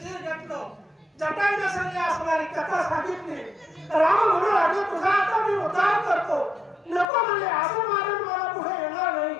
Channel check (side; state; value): right; drops out; at 7.1 s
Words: शिर घेतलं जटायूने सगळी असणारी कथा सांगितली राम म्हणू लागले तुझा आता मी उद्धार करतो नको म्हणले असं मारून मला पुढे येणार नाही